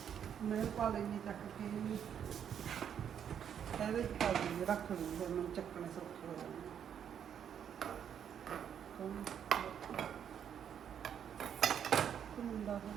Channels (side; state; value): left; quieter; 8.6 dB